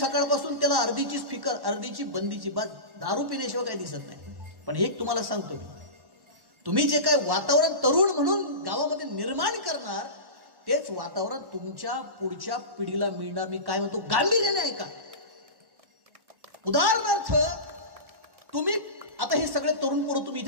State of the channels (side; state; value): left; late; 1.1 ms